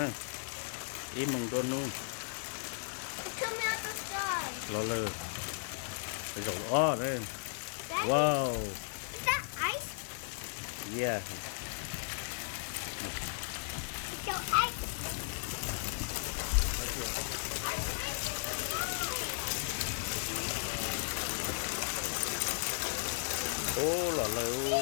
im mong đua nu Come out the sky. lò lời cái dầu đây Daddy, wow is that ice? yeah So ice. ô lò lời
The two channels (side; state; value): right; silent; digital silence